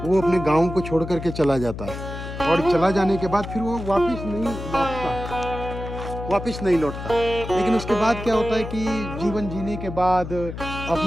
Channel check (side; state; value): left; noise; hum, 8 dB below the sound